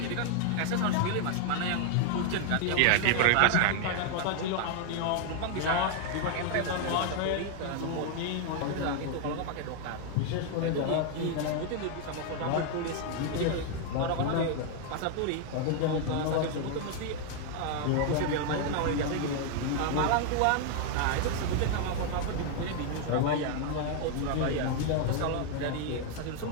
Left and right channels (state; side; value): different; both; correlation 0.00